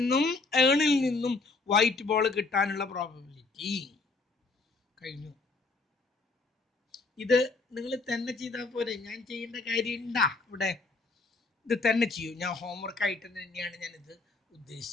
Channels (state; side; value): quieter; right; 3.7 dB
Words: ഏണിൽ നിന്നും വൈറ്റ് ബോൾ കിട്ടാനുള്ള പ്രോബബിലിറ്റി. കഴിഞ്ഞു. ഇത് നിങ്ങൾ തന്നെ ചെയ്താൽ പോരെ, ഞാൻ ചെയ്യേണ്ട കാര്യം ഉണ്ടാ ഇവിടെ? ഇത് തന്നെ ചെയ്യൂ. ഞാൻ ഹോംവർക്ക് ആയിട്ട് തന്നെയാണ് ഞാനിത്